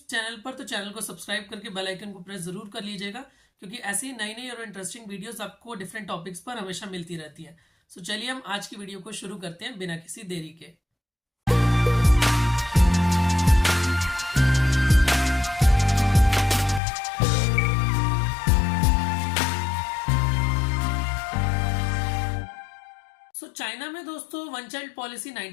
चैनल पर तो चैनल को सब्सक्राइब करके बेल आइकन को प्रेस जरूर कर लीजिएगा, क्योंकि ऐसी नई नई और इंटरेस्टिंग वीडियोस आपको डिफरेंट टॉपिक्स पर हमेशा मिलती रहती है। चलिए हम आज की वीडियो को शुरू करते हैं बिना किसी देरी के। चाइना में दोस्तों वन चाइल्ड पॉलिसी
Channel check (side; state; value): right; drops out; at 16.8 s